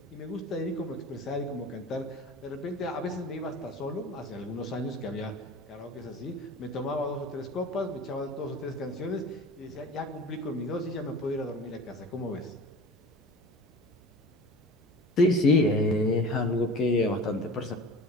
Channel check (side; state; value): both; normal; correlation 0.38